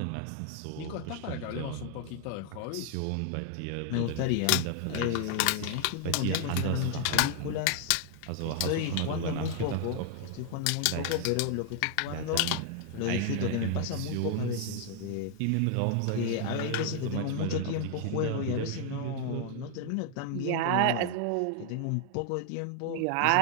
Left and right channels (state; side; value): different; both; correlation 0.00